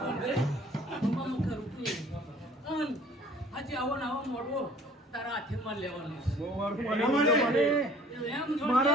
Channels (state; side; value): normal; both; correlation 0.52